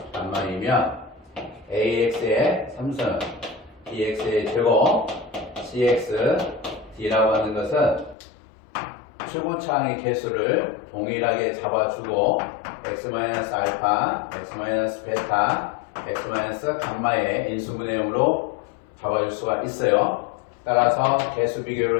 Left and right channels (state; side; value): drops out; right; at 8.2 s